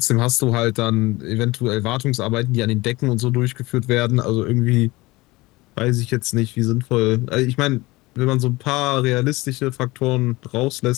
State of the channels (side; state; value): right; quieter; 21.5 dB